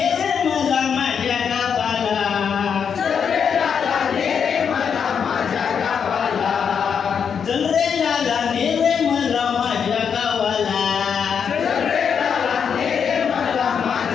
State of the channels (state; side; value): quieter; right; 7.0 dB